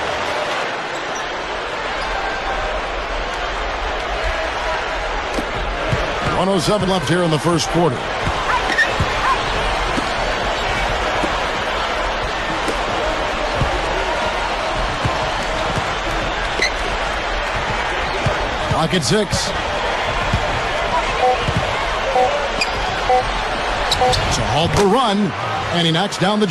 .107 left here in the first quarter. Clock at 6. To halt the run, and he knocks down the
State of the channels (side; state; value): both; identical; correlation 1.00